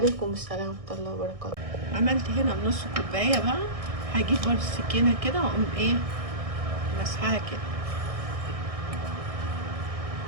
السلام ورحمة الله وبركاته. عملت هنا نص كوباية بقى، هجيب برضو السكينة كده واقوم ايه مسحها كده،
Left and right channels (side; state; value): left; late; 1.6 ms